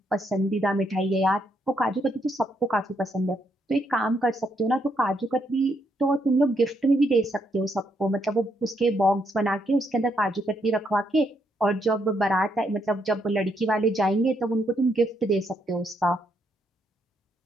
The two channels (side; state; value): both; normal; correlation 0.76